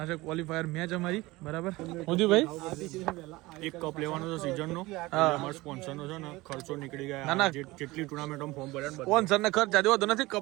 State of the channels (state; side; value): quieter; left; 20.5 dB